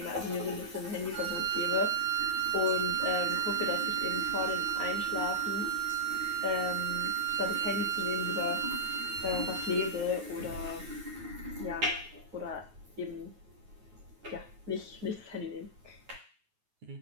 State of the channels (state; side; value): late; left; 9.5 ms